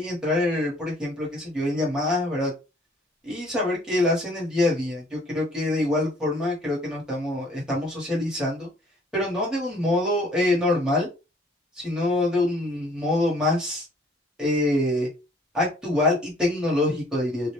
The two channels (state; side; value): normal; both; correlation 0.58